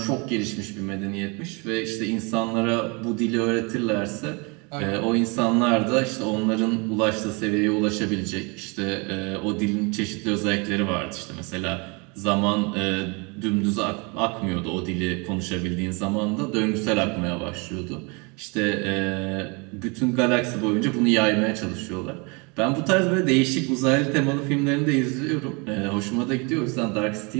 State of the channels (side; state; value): left; quieter; 30.3 dB